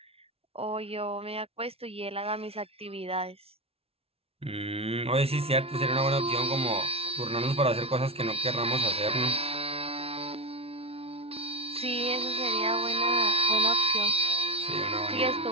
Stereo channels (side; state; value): left; late; 0.29 ms